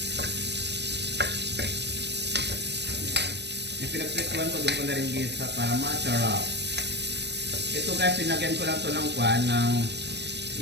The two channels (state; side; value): late; left; 0.50 ms